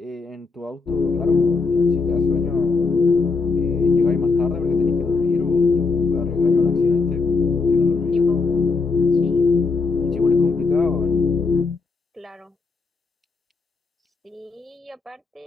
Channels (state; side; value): quieter; right; 4.4 dB